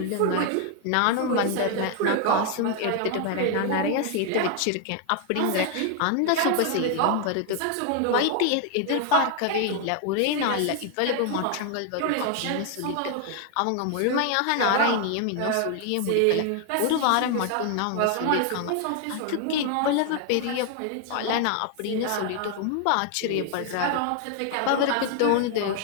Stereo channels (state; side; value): different; both; correlation 0.00